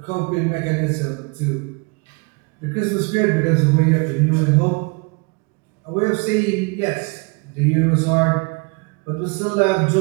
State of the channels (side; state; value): left; quieter; 30.5 dB